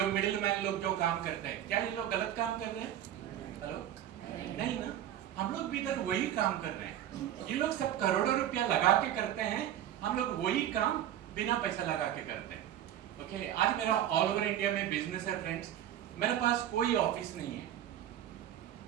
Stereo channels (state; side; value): quieter; left; 11.4 dB